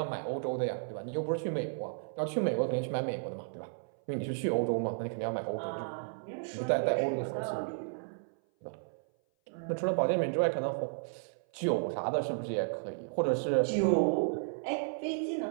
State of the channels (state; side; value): silent; left; 56 dB below the other